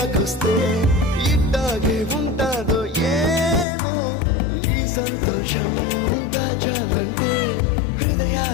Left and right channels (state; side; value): drops out; right; at 3.7 s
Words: ఇట్టాగే ఉంటాదో ఏమో ఈ సంతోషం దాచాలంటే